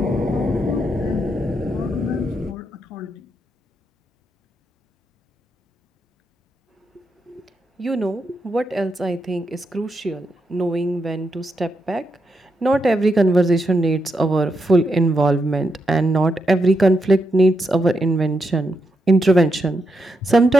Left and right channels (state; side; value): normal; both; correlation 0.83